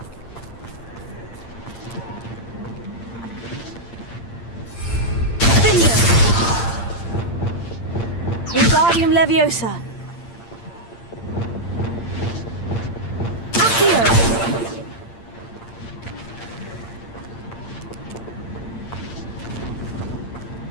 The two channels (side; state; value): right; late; 8.7 ms